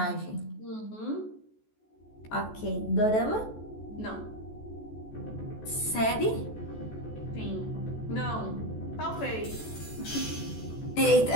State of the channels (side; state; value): right; late; 14 ms